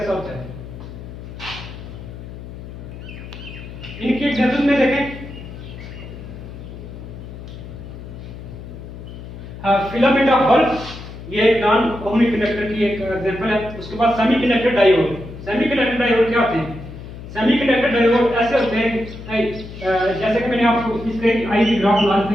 होता है। इनकी एग्जांपल में देखें, फिलामेंट ऑफ बल्ब, ये एक नॉन ओहमिक कंडक्टर की एक एग्जांपल है। उसके बाद सेमीकंडक्टर डायोड। सेमीकंडक्टर डायोड क्या होते हैं? सेमीकंडक्टर डायोड ऐसे होते हैं, जैसे कि मैंने आपको इसके आईवी ग्राफ बना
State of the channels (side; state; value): left; noise; hum, 12 dB below the sound